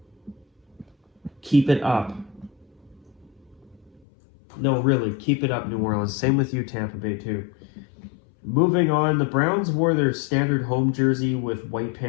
Keep it up. No, really, keep it up, New Orleans. Same with you, Tampa Bay, too. Moving on, the Browns wore their standard home jersey with white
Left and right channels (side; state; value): right; drops out; at 4.0 s